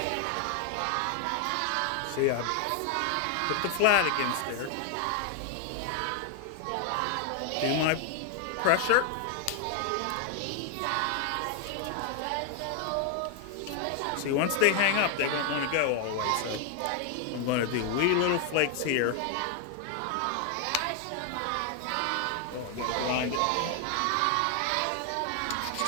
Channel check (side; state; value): both; different; correlation 0.00